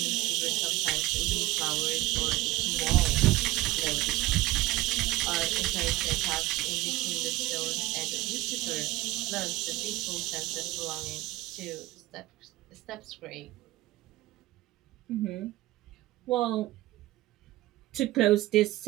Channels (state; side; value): quieter; left; 18.2 dB